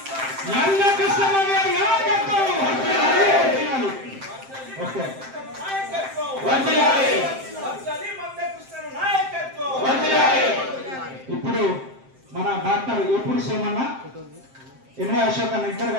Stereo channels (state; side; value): late; left; 7.6 ms